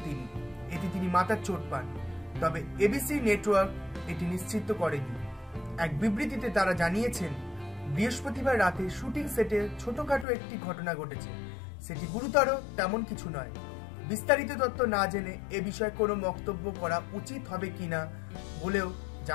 তিনি। এতে তিনি মাথার চোট পান। তবে এবিসি নেটওয়ার্ক এটি নিশ্চিত করেনি। এক বিবৃতিতে তারা জানিয়েছেন, বৃহস্পতিবার রাতে শুটিং সেটে ছোটখাটো একটি ঘটনা ঘটেছে, সেটি গুরুতর তেমন কিছু নয়। বিস্তারিত তথ্য না জেনে এ বিষয়ে কোনো মন্তব্য করা উচিত হবে কিনা বলেও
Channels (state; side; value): drops out; right; at 10.2 s